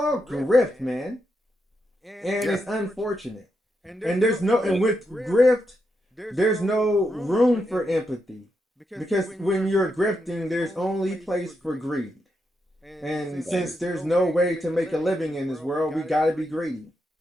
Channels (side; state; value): both; normal; correlation 0.83